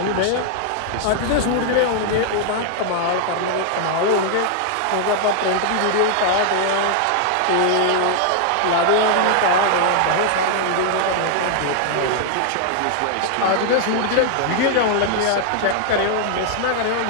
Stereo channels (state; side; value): different; both; correlation 0.00